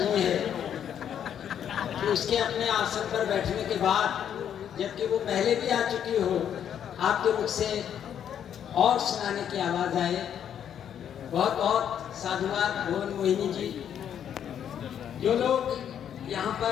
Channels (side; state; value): right; quieter; 9.2 dB